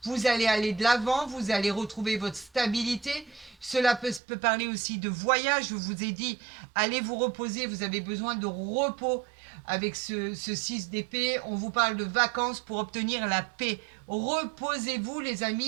Vous allez aller de l'avant, vous allez retrouver votre stabilité. Cela peut parler aussi de voyage. Je vous ai dit, allez vous reposer, vous avez besoin de repos avec ce 6 d'épée. On vous parle de vacances pour obtenir la paix. Reposez-vous, les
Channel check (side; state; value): left; drops out; at 4.2 s